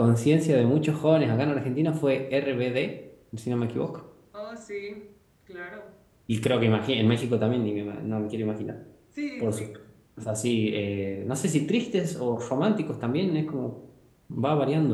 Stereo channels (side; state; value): both; identical; correlation 1.00